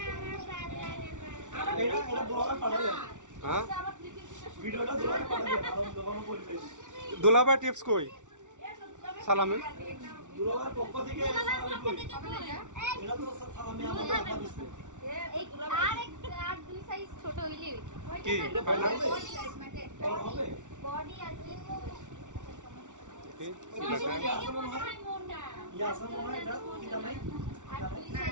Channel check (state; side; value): late; left; 0.86 ms